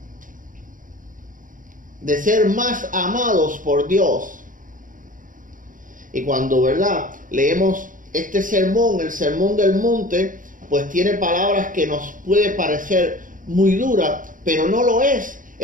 de ser más amados por Dios. Y cuando, ¿verdad?, leemos este sermón, el sermón del monte, pues tiene palabras que nos puede parecer muy duras, pero no lo es.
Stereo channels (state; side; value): late; left; 0.39 ms